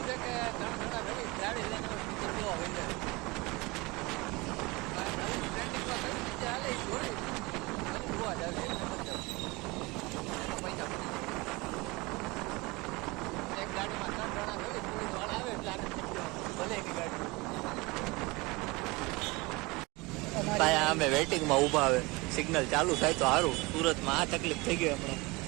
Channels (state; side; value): quieter; left; 24.3 dB